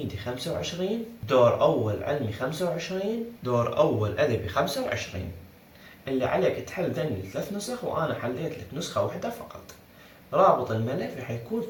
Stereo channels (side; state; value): both; identical; correlation 1.00